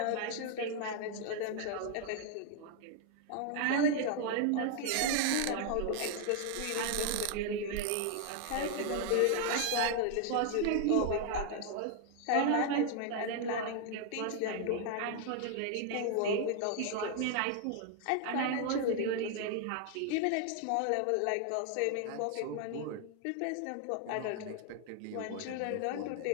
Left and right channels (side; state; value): both; different; correlation 0.00